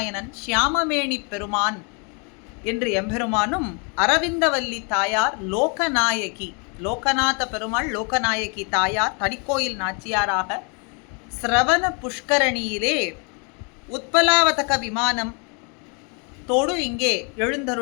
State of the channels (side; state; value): right; quieter; 35.8 dB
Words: சியாமமேனி பெருமான் என்று எம்பெருமானும், அரவிந்தவல்லி தாயார் லோகநாயகி, லோகநாத பெருமாள் லோகநாயகி தாயார் தனிக்கோயில் நாச்சியாராக சிரவண புஷ்கரணியிலே உத்பலாவதக விமானம் தோடு இங்கே